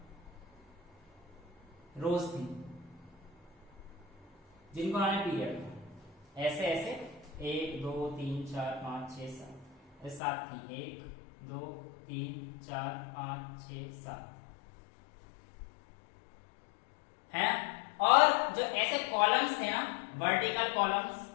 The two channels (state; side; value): drops out; right; at 10.2 s